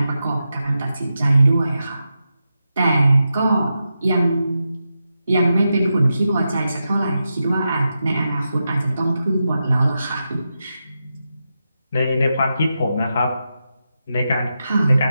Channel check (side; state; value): both; inverted; correlation -0.88